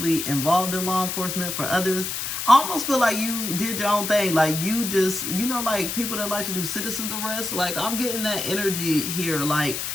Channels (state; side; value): noise; left; hiss, 4 dB below the sound